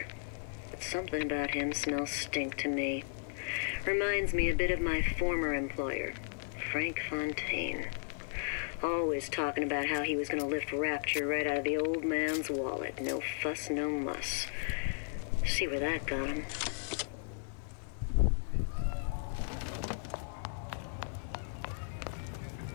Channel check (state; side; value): silent; right; 54 dB below the other